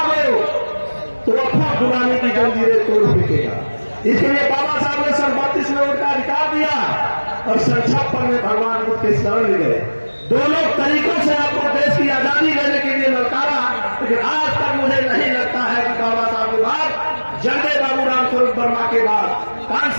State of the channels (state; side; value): inverted; both; correlation -1.00